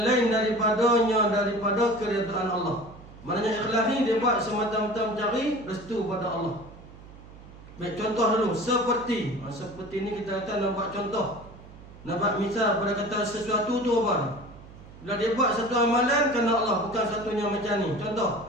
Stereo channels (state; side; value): noise; right; hum, 19 dB below the sound